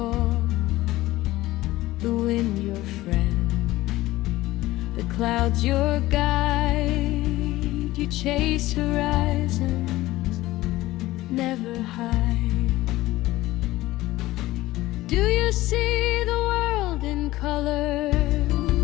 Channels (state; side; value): quieter; right; 17.3 dB